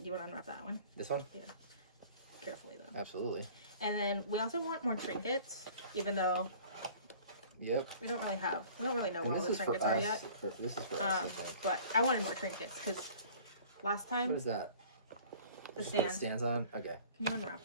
you want to unwrap that one? This one? Yeah. Carefully though. Absolutely. And then we also want more trinkets, even though Yep. we don't really know And where all this the is for trinkets are us. yet. This is for us, I think. But I wanted more trinkets because last time What is that? the Just put stand. stands on? Okay. Can you unwrap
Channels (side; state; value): both; inverted; correlation -0.48